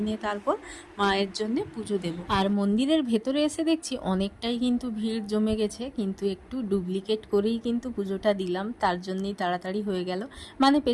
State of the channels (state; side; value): identical; both; correlation 1.00